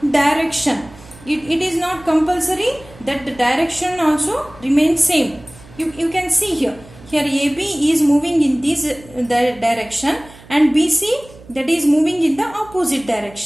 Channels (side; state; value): right; noise; hum, 22 dB below the sound